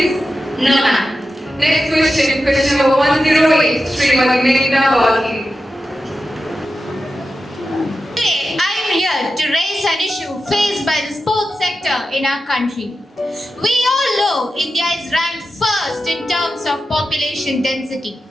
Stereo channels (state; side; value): normal; both; correlation 0.91